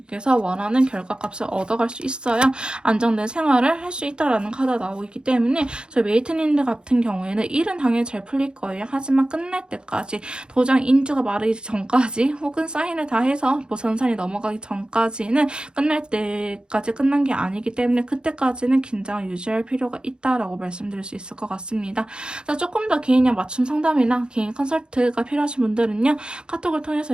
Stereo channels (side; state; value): left; late; 0.049 ms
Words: 원하는 결과값을 얻어갈 수 있어요. 안정된 생활을 할 수 있다라는 카드가 나오고 있기 때문에, 저희 메이트님들 같은 경우에는 일은 당연히 잘 풀릴 거예요. 하지만 끝날 때까지, 도장 인주가 마르기 전까지, 혹은 사인을 다 해서 뭐 전산이 넘어가기 전까지는 끝날 때까지 끝난 게 아니기 때문에, 그때까지는 긴장을 유지할 필요가 있다라고 말씀드릴 수 있을 것 같습니다. 자, 조금 더 개인형 맞춤 상담이나 개인 컨설트가 필요하신 분들은요, 카톡을 통해서